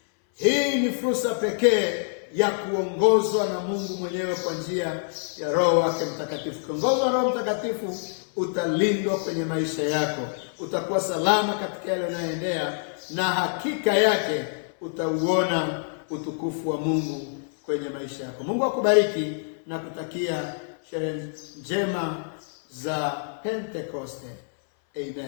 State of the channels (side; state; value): right; silent; 59 dB below the other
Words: Hii ni fursa pekee ya kuongozwa na Mungu mwenyewe kwa njia ya Roho wake Mtakatifu. Kuongozwa na Roho Mtakatifu, utalindwa kwenye maisha yako, utakuwa salama katika yale unayoendea, na hakika yake utauona utukufu wa Mungu kwenye maisha yako. Mungu akubariki na kutakia sherehe njema za Pentekoste.